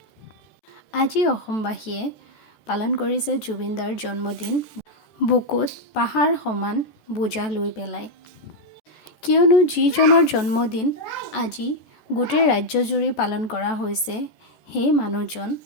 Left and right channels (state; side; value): late; right; 14 ms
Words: আজি অসমবাসীয়ে পালন কৰিছে জুবিনদাৰ জন্মদিন বুকুত পাহাৰ সমান বোজা লৈ পেলাই। কিয়নো যিজনৰ জন্মদিন আজি গোটেই ৰাজ্যজুৰি পালন কৰা হৈছে, সেই মানুহজন